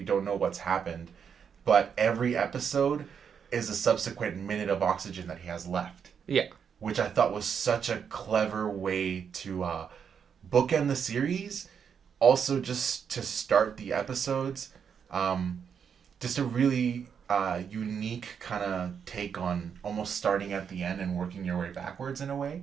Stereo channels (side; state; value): left; quieter; 7.2 dB